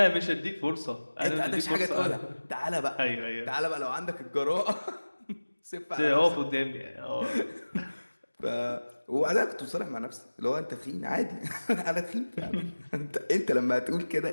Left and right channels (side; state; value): both; inverted; correlation -1.00